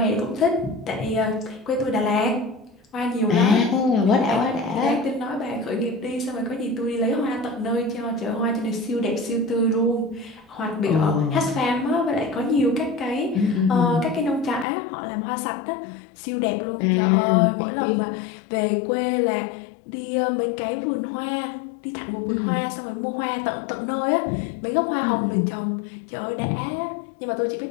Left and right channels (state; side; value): drops out; right; at 14.7 s